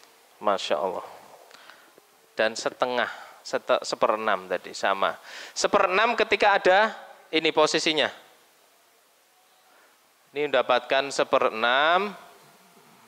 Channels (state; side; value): identical; both; correlation 1.00